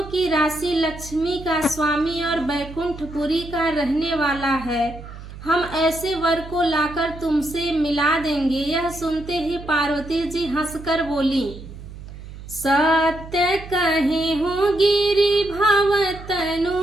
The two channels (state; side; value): noise; right; hum, 14 dB below the sound